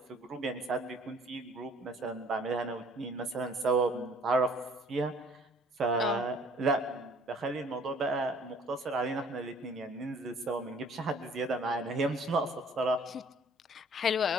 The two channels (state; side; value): normal; both; correlation 0.54